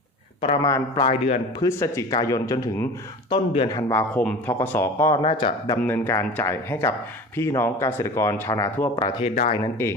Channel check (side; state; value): both; normal; correlation 0.36